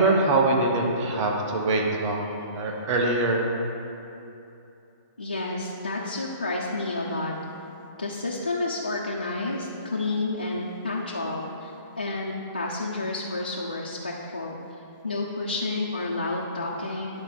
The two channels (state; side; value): inverted; both; correlation -0.46